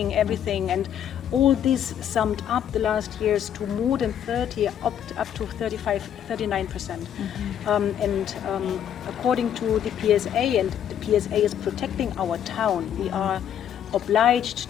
everything. And all this summed up the last years to more than 30, up to 35-39%. According to the PSA, and the PSA is protecting our town, we are obliged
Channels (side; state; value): right; quieter; 9.6 dB